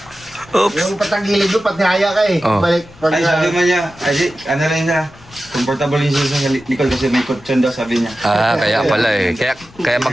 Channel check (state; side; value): noise; left; rumble, 24 dB below the sound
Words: Oops. Yung patagilid doon, pati haya ka eh. Oh. Balik, pag Ay, sabi man niya, ano lang niya, comfortable yung sa likod kasi may kutsyon daw, sabi niya. Ah, kaya pala eh. Kaya